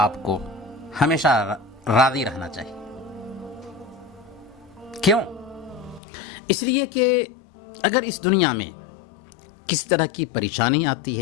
آپ کو ہمیشہ راضی رہنا چاہیے. کیوں؟ اس لیے کہ اگر اس دنیا میں کس طرح کی پریشانی آتی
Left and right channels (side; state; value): right; drops out; at 6.0 s